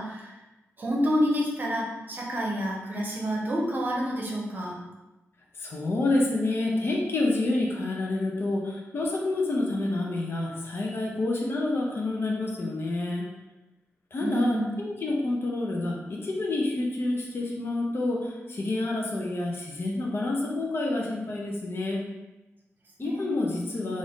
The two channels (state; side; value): normal; both; correlation 0.88